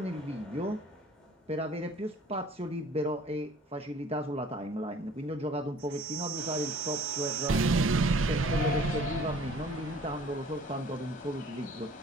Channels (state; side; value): normal; both; correlation 0.52